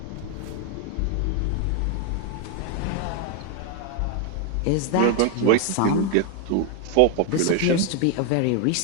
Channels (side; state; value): both; different; correlation 0.01